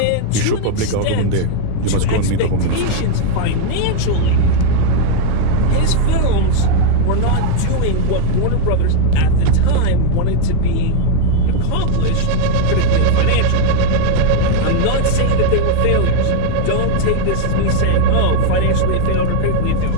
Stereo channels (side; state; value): both; different; correlation 0.00